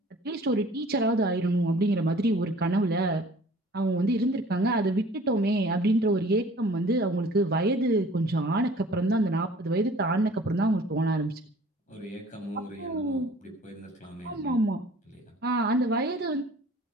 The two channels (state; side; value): normal; both; correlation 0.50